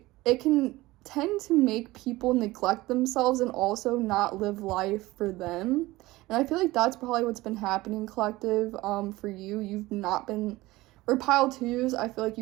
it can tend to make people neglect themselves and also not live life for them. And I feel like that's probably what's been happening, collective, for you. You've not been, or pile twos, I feel like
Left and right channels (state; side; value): quieter; left; 19.1 dB